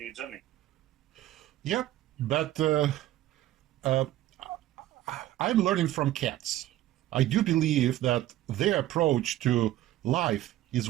journey. Yep, but I'm learning from cats. I do believe that their approach to life is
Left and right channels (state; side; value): quieter; left; 14.4 dB